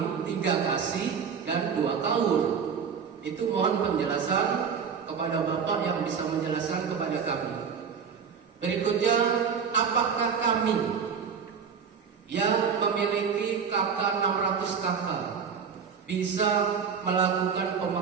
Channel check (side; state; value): left; quieter; 6.6 dB